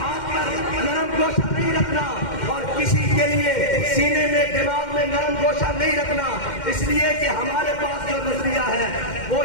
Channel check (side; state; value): right; late; 2.1 ms